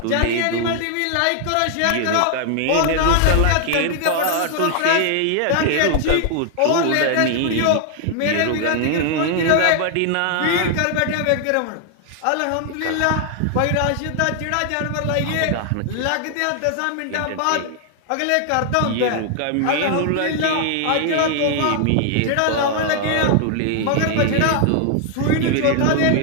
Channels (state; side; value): different; both; correlation 0.00